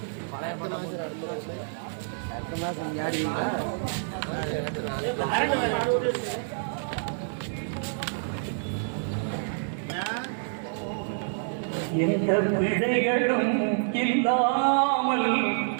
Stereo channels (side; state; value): left; silent; digital silence